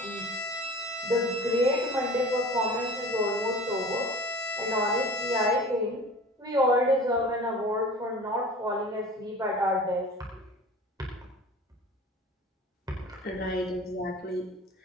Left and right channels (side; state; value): both; normal; correlation 0.40